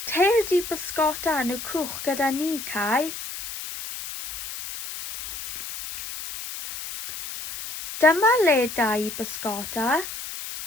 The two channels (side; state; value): left; noise; hiss, 9 dB below the sound